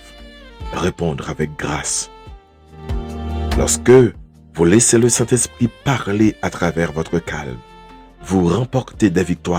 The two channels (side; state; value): both; identical; correlation 1.00